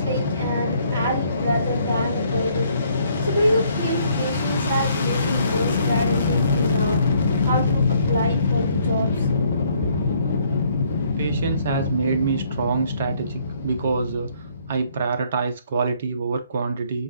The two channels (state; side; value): inverted; both; correlation -0.65